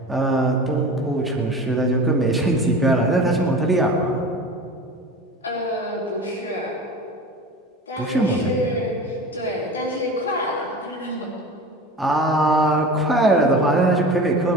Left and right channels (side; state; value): both; normal; correlation 0.35